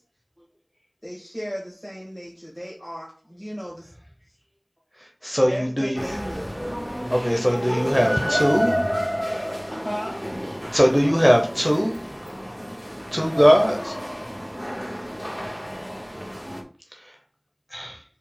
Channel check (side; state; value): both; identical; correlation 1.00